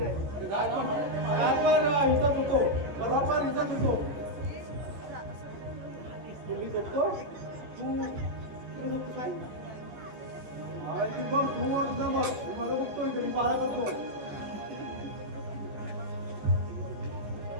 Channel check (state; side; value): late; left; 15 ms